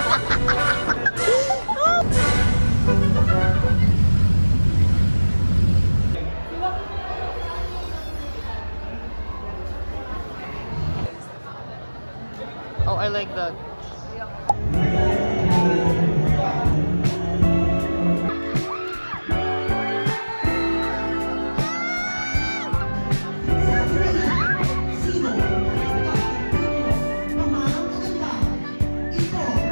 Oh, I like that.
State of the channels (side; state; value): both; inverted; correlation -1.00